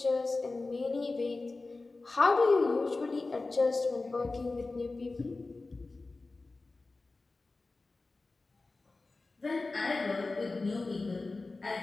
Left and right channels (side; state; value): right; quieter; 3.5 dB